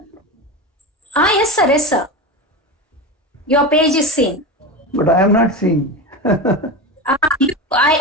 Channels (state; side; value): normal; both; correlation 0.23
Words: Yes, sir. Your page is seen. But I am not seeing.